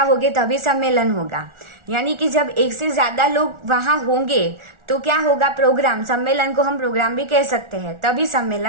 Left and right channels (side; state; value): left; late; 1.4 ms